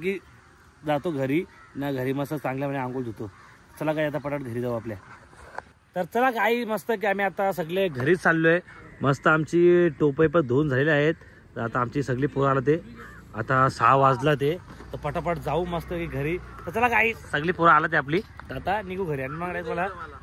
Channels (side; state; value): both; identical; correlation 1.00